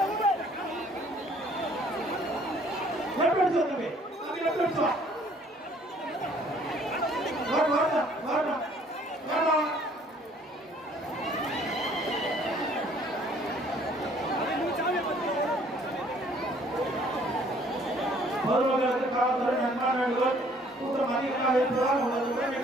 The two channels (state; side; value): normal; both; correlation 0.59